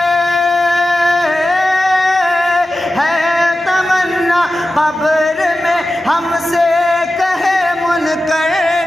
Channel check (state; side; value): normal; both; correlation 0.93